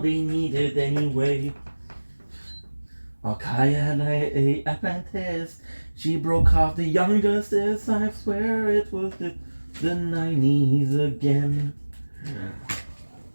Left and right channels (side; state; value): both; inverted; correlation -1.00